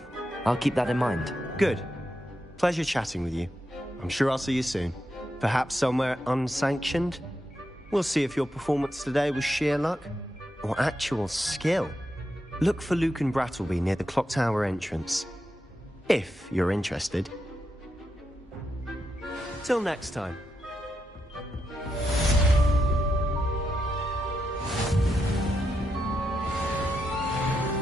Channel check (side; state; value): both; normal; correlation 0.85